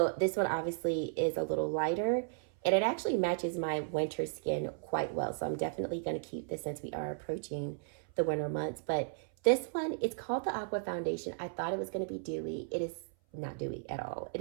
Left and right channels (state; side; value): silent; left; 55 dB below the other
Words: this one obviously is a little lighter, and it actually matches my winter skin quite well. So I'm definitely going to keep this since we are approaching the winter months. But this one, it's called the Aqua Foundation. I thought it was going to be dewy. It is not dewy at all. It